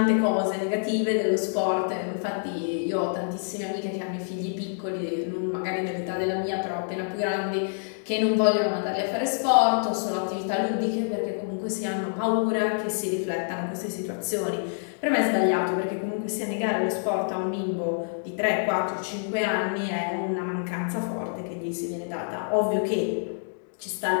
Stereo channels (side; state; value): right; silent; 60 dB below the other